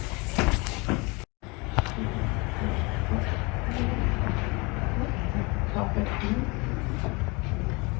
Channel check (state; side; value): quieter; right; 27.6 dB